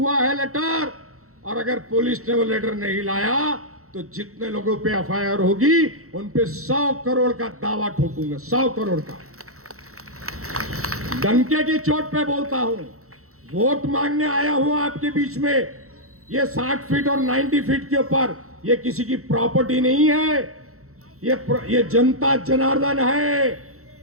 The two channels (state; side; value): late; left; 0.64 ms